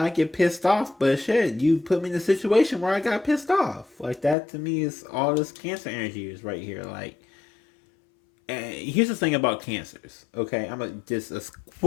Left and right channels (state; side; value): drops out; right; at 4.4 s